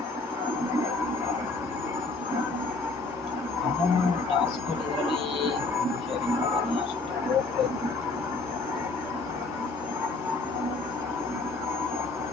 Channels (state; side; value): quieter; right; 3.6 dB